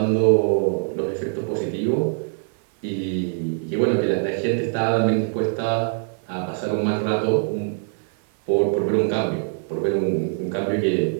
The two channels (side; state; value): left; silent; 56 dB below the other